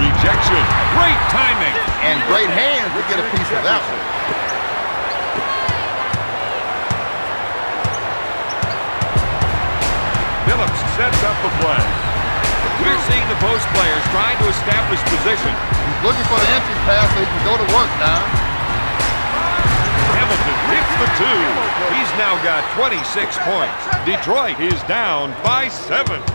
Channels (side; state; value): both; inverted; correlation -1.00